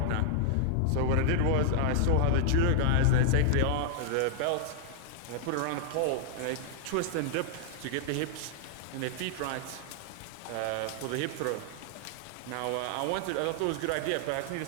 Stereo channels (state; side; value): different; both; correlation 0.00